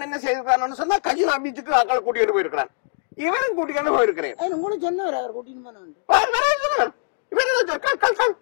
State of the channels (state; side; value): silent; right; digital silence